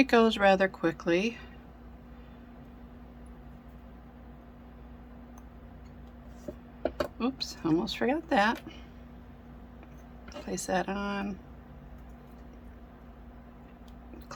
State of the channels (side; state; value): both; identical; correlation 1.00